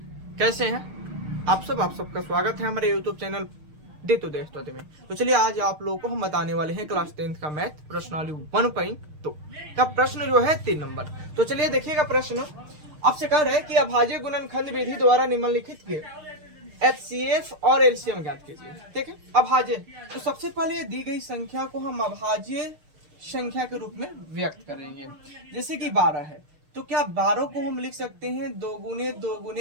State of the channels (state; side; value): late; left; 6.6 ms